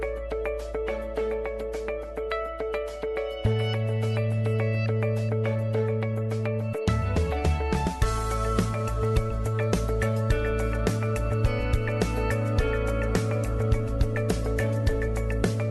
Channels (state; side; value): identical; both; correlation 1.00